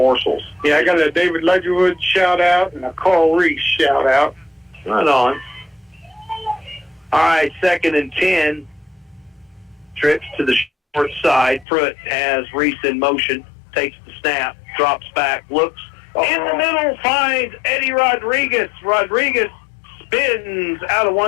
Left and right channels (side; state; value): right; drops out; at 11.7 s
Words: Yeah, I got a David Ledgerwood shout-out and a Carl Reese shout-out. Right on. All right, 2nd and 10. Trips to the short side. Pruitt has Reese in motion. Takes the snap. Drops back. Looks. In the middle, finds Eddie Rodriguez. Rodriguez spins out of